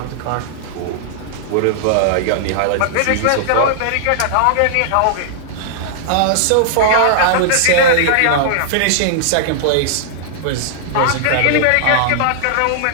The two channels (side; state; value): both; different; correlation -0.01